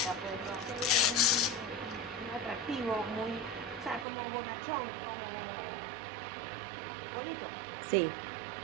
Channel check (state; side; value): drops out; left; at 4.0 s